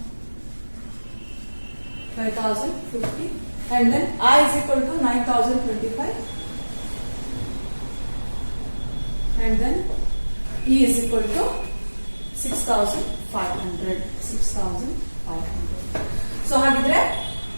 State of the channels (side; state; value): both; inverted; correlation -1.00